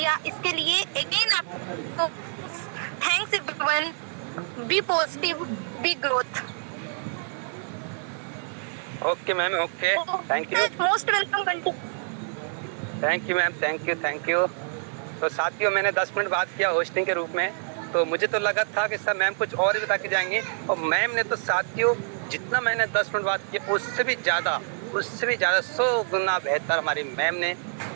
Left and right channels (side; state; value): left; silent; 58 dB below the other